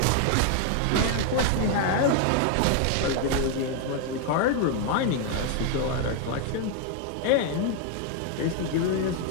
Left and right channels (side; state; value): both; different; correlation 0.00